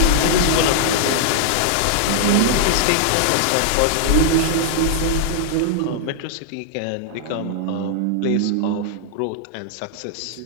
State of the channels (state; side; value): different; both; correlation -0.01